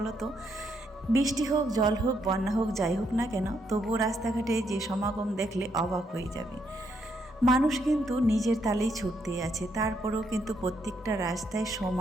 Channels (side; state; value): both; normal; correlation 0.76